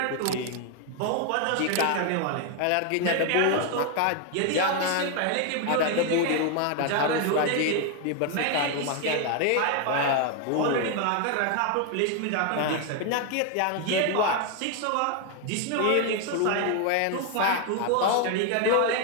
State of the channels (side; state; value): both; different; correlation 0.01